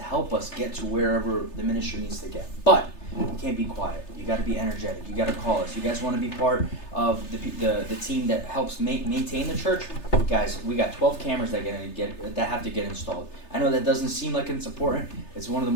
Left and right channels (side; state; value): right; late; 3.3 ms